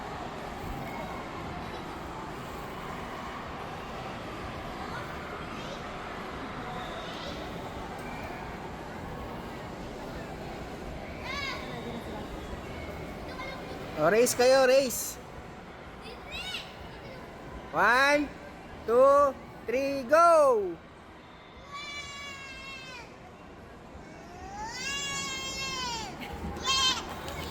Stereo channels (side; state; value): both; identical; correlation 1.00